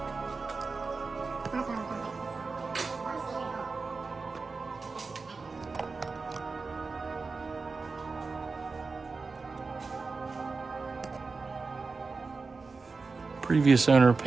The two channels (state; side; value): quieter; left; 4.3 dB